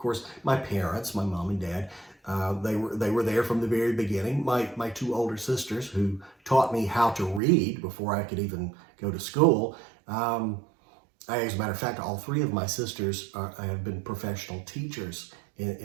my parents, my mom and dad. They were there from the very beginning. My two older sisters who taught me how to read before I could even go to school. As a matter of fact, all three of my sisters have been professional teachers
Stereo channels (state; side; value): drops out; left; at 7.4 s